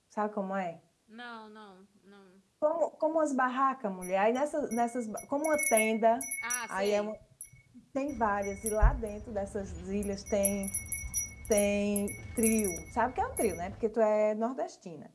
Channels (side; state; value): both; identical; correlation 1.00